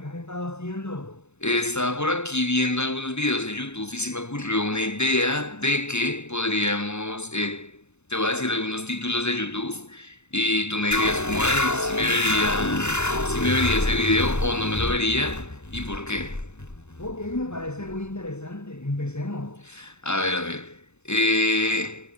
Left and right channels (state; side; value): late; right; 0.81 ms